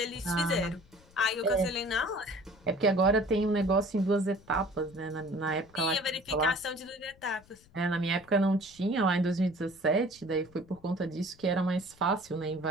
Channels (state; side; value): noise; left; rumble, 27 dB below the sound